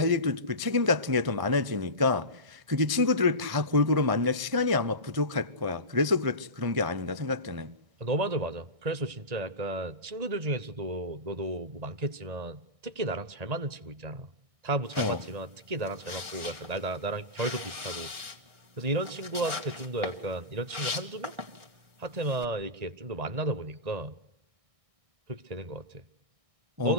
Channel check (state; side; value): late; left; 1.6 ms